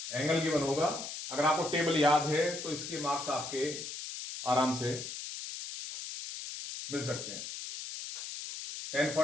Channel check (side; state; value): left; noise; hiss, 8 dB below the sound